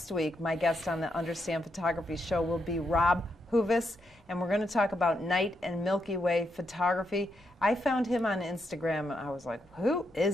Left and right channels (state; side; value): normal; both; correlation 0.81